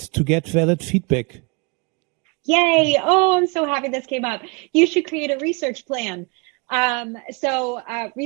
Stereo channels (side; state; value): left; quieter; 31.2 dB